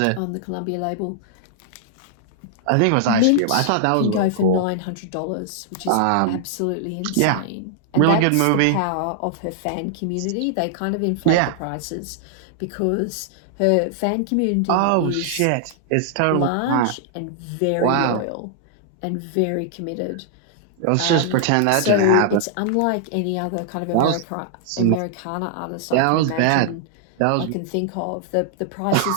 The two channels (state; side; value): different; both; correlation -0.01